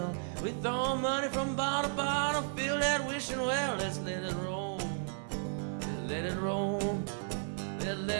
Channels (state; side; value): silent; left; 55 dB below the other